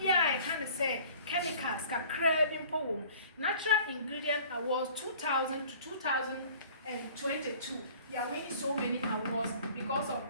kind of say chemicals ka craving poem. Natural ingredient awards 2000 to 2022. They are winning so many awards because of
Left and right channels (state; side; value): inverted; both; correlation -0.49